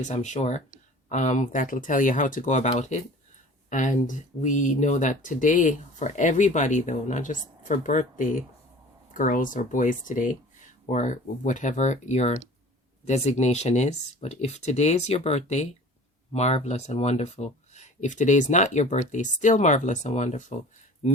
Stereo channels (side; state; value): both; normal; correlation 0.43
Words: I'm sure. That'll tell you how to go about it. And we know that today, for everybody though, not just for birthday girls or boys today, or whatever your designation is, but if today is your birthday, marvelous and wonderful. If today is not your birthday, still marvelous and wonderful.